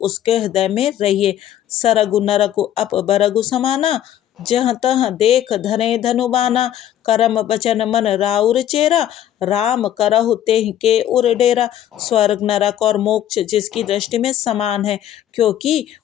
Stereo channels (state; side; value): quieter; right; 11.3 dB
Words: हृदय में रहिए। सरगु नरगु अप बरगु समाना, जहाँ तहाँ देख धने धनुबाना, करम बचन मन राउर चेरा, राम करहु तेहि के उर डेरा। स्वर्ग नरक और मोक्ष जिसकी दृष्टि में समान है, क्योंकि